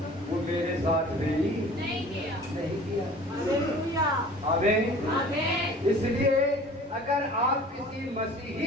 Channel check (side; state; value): both; normal; correlation 0.45